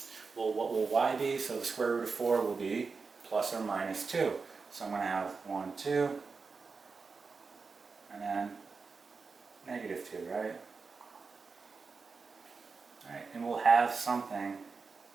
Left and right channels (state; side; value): quieter; left; 4.7 dB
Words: Well, what will y be? So the square root of 4 will be plus or minus 2. So I'm going to have 1, 2, and then negative 2, right? Alright, and we'll have something